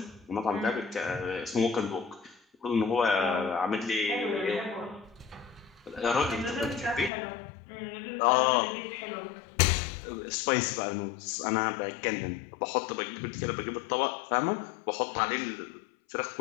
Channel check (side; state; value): right; drops out; at 7.1 s